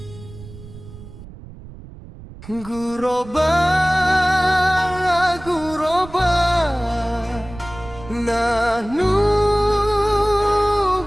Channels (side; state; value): right; noise; rumble, 17 dB below the sound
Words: Guroba, guroba, nahnu